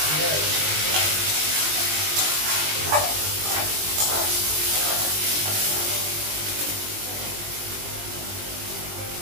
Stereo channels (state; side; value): late; left; 20 ms